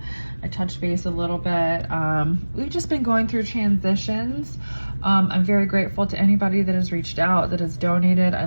I touched base a little bit. We've just been going through transitions. I'm very grateful to anybody that has reached out, that has donated. I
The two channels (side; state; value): both; inverted; correlation -1.00